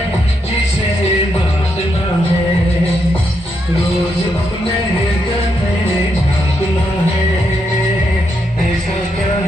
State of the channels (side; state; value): both; normal; correlation 0.80